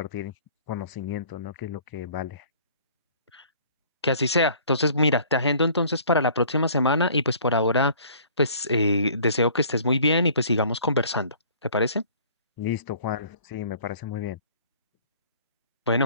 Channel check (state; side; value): inverted; both; correlation -0.52